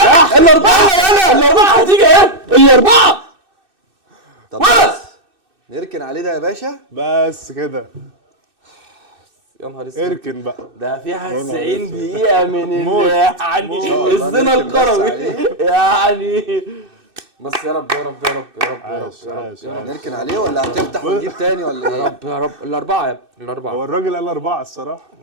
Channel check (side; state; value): left; late; 2.6 ms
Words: الاربعه هتيجي ايه؟ الاربعه. طب بس نركن عليه ده يا باشا. بس كده. يا نهار اسود. اركن بقى. ده فيها يا نهار 90 اسود. دقيقة من موت. يعني موت. الزنا نركن بس الكروي عليه. يعني. بس يا رب يا رب يا رب يا رب يا رب عاش، يا رب عاش، يا رب نركن عليه ولا هتفتح وتجيب تاني ولا يا ايه؟ رب يا رب. الأربعة يا ابني هو الأربعة. الراجل قال 4 الصراحه.